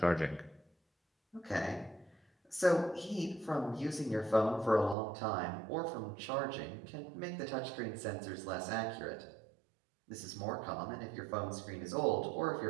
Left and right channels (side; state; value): left; drops out; at 5.0 s